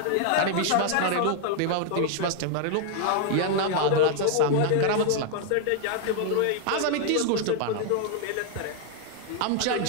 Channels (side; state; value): both; different; correlation 0.00